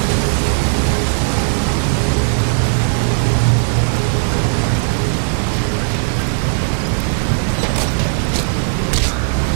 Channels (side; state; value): left; silent; digital silence